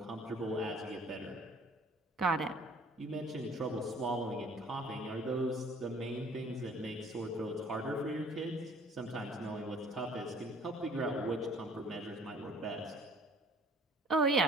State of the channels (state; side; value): normal; both; correlation 0.54